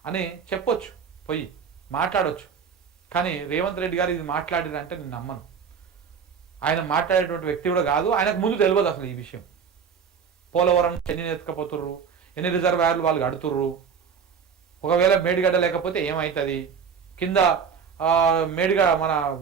అని చెప్పొచ్చు, పోయి మాట్లాడొచ్చు. కానీ రేవంత్ రెడ్డి గారు ఇది మాట్లాడారంటే నేను నమ్మను. ఆయన మాట్లాడేటువంటి వ్యక్తి కూడా కాదు, ఆయనకు ముందు తెలియదు అసలు ఈ విషయం. పోలవరం ఎన్ని ఎత్తుకపోతుర్రు, ఎన్ని రిజర్వాయర్లు వాళ్ళు కడుతుర్రు, ఒకవేళ మేడిగడ్డ లేకపోతే ఏమవుతుంది, కింద మన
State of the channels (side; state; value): left; quieter; 6.6 dB